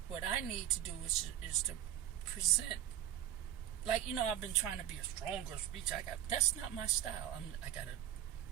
What I need to do is to present, like I've been trying to be a stronger speech. That's not my style. I got a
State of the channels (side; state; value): left; quieter; 11.2 dB